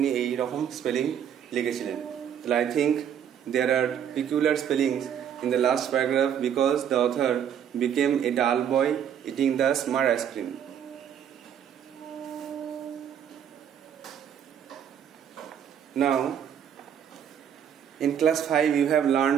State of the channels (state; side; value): quieter; left; 8.9 dB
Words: এই রকম স্পেলিং লিখেছিলেন। তাহলে I think there are peculiar spellings in the last paragraph because the author became a dull boy eating the smart ice cream. Now in class 5 you have